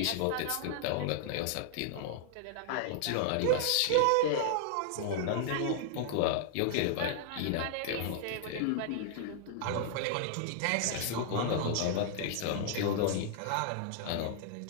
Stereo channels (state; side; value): different; both; correlation -0.01